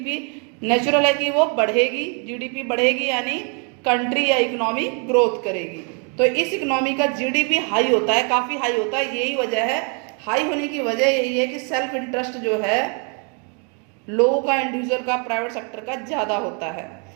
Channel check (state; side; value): quieter; left; 37.8 dB